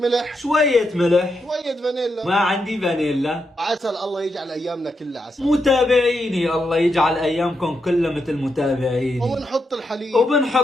شوية ملح، شوية فانيلا، ما عندي فانيلا. عسل. الله يجعل ايامنا كلها عسل. متابعيني الله يجعل ايامكم كلها مثل متابعيني. وبنحط الحليب،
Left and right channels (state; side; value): normal; both; correlation 0.83